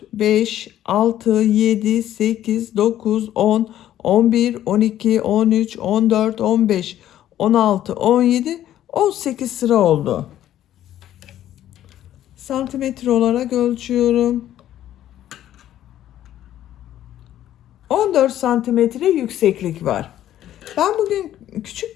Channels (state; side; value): quieter; right; 12.2 dB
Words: 5, 6, 7, 8, 9, 10, 11, 12, 13, 14, 15, 16, 17, 18 sıra oldu. Santimetre olarak ölçüyorum. 14 santimetre yükseklik var. Ben bugün